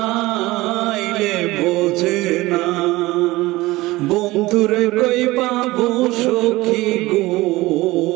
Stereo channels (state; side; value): quieter; left; 19.5 dB